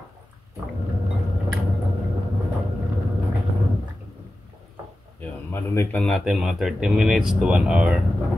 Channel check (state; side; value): normal; both; correlation 0.94